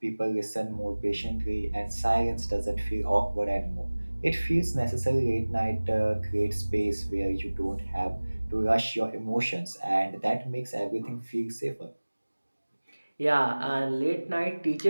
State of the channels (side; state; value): both; inverted; correlation -1.00